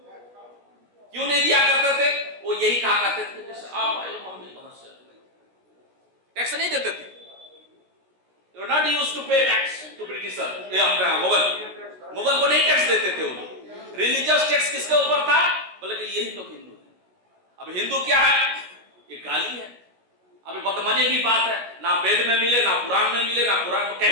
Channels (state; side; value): late; left; 16 ms